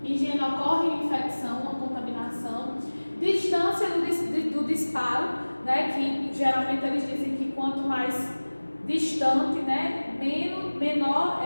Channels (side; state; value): both; inverted; correlation -1.00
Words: higiene ocorre infecção, uma contaminação, distância do disparo, né? Que geralmente eles dizem que quanto mais distante, né, menor